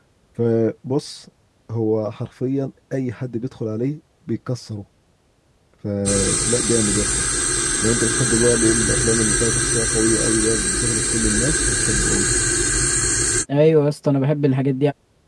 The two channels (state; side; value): identical; both; correlation 1.00